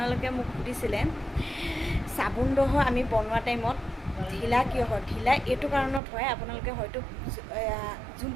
মোক সুধিছিলে চাবোনডোহ আমি বনোৱা টাইমত ঢিলা কিয় হয়। ঢিলা এইটো কাৰণত হয়, আপোনালোকে হয়তো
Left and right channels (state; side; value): drops out; left; at 6.0 s